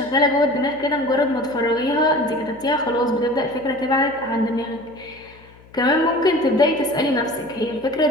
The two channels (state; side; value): noise; left; hum, 25 dB below the sound